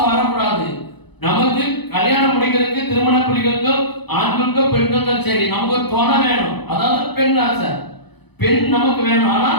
வரக்கூடாது. நமக்கு கல்யாணம் முடிக்கிறதுக்கு, திருமண புரிகளுக்கு, ஆண்களுக்கோ பெண்களுக்கோ சரி, நமக்கு ஒரு துணை வேணும். அதாவது பெண் ஆசை. பெண் நமக்கு வேணும், ஆனா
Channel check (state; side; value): late; right; 0.98 ms